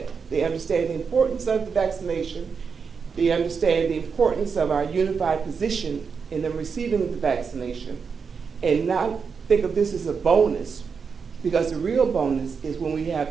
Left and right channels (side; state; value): left; quieter; 5.7 dB